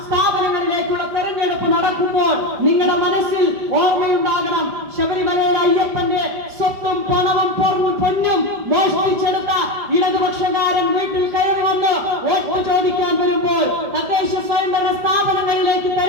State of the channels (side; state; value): left; late; 5.0 ms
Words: സ്ഥാപനങ്ങളിലേക്കുള്ള തെരഞ്ഞെടുപ്പ് നടക്കുമ്പോൾ നിങ്ങളുടെ മനസ്സിൽ ഓർമ്മയുണ്ടാകണം, ശബരിമലയുടെ അയ്യപ്പന്റെ സ്വത്തും പണവും പൊന്നും മോഷ്ടിച്ചെടുത്ത ഇടതുപക്ഷക്കാരൻ വീട്ടിൽ കയറി വന്ന് വോട്ട് ചോദിക്കാൻ വരുമ്പോൾ, തദ്ദേശ സ്വയംഭരണ സ്ഥാപനങ്ങളിലേക്ക്